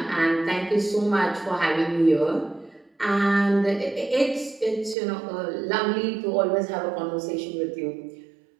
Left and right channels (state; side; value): drops out; left; at 5.0 s